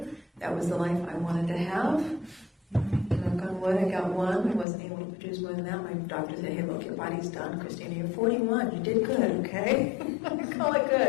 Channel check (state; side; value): drops out; right; at 4.7 s